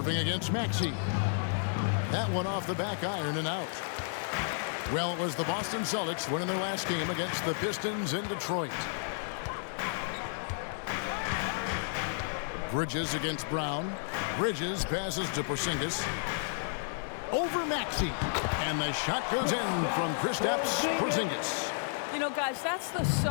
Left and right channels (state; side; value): silent; right; digital silence